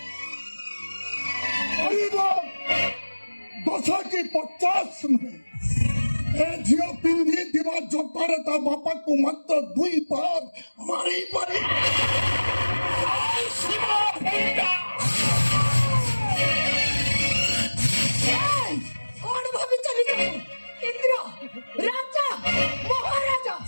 କରିବ 10 କି 50 ନୁହେଁ। ଏ ଝିଅ ପିନ୍ଧିଥିବା ଜୋତାରେ ତା ବାପାକୁ ମାତ୍ର 2 ବାର ମାରିପାରିବ। ଜୟ ଶିବ ଭଣ୍ଡା। कौन भाभी चली जाओ इंद्र राजा महाराजा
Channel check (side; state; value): both; inverted; correlation -1.00